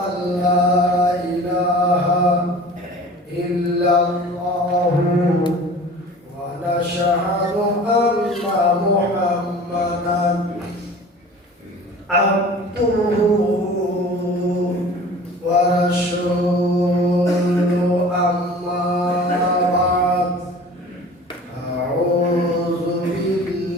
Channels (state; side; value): normal; both; correlation 0.42